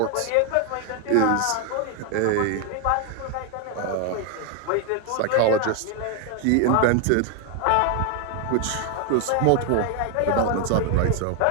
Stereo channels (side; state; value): both; different; correlation 0.01